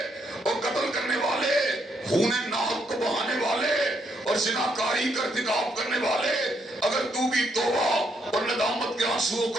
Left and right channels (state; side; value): normal; both; correlation 0.75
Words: اور قتل کرنے والے، خون ناحق کو بہانے والے اور زناکاری کا ارتکاب کرنے والے، اگر تو بھی توبہ اور ندامت کے آنسوؤں